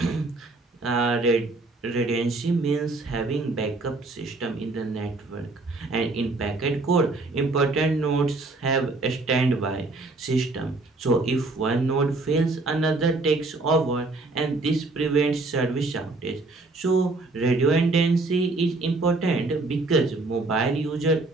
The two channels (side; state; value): left; quieter; 3.3 dB